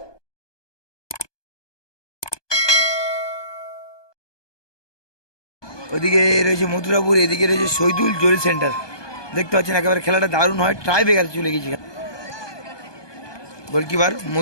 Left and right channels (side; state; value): right; late; 1.2 ms